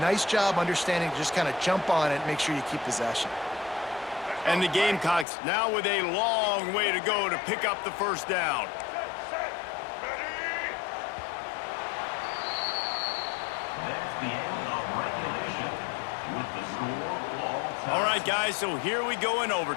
job understanding to just kind of jump on it and make sure you keep possession. And the Gamecocks now with a long way to go to pick up the 1st down. That's the end of regulation with the score all time. All right, guys, so here we go in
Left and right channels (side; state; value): right; drops out; at 5.2 s